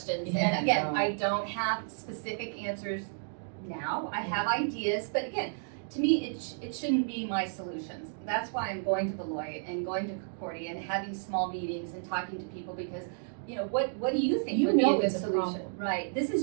Yeah, and again, no. I don't have specific answers now. I have ideas, but again, to me, it shouldn't be my solutions. That's why I'm going to Beloit and going to Concordia and having small meetings and talking to people, because, you know, what do you think would be a good solution? Right. This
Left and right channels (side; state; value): left; silent; digital silence